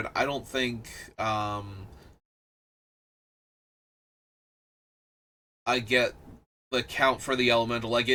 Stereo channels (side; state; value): both; identical; correlation 1.00